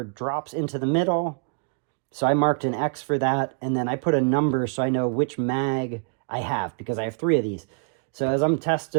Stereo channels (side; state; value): left; quieter; 38.7 dB